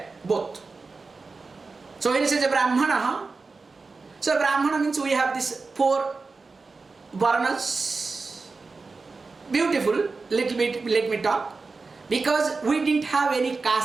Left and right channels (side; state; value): left; quieter; 4.1 dB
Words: both. So when it says a Brahmana, so Brahmana means we have these 4 varnas. Beautiful, little bit, let me talk. Because we didn't have any